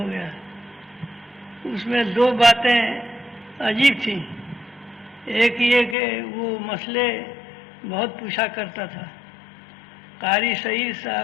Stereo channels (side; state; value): right; drops out; at 6.0 s